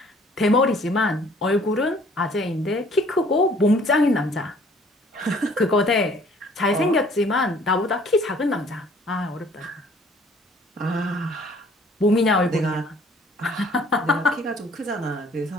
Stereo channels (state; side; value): normal; both; correlation 0.56